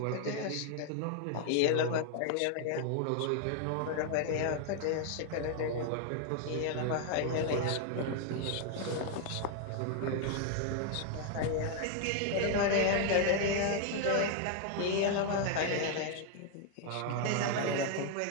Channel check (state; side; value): different; both; correlation 0.01